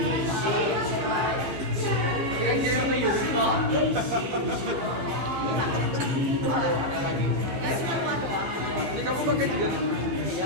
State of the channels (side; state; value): left; late; 15 ms